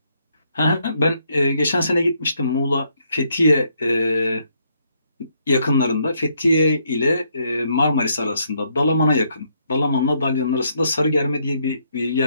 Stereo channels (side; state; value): both; inverted; correlation -0.73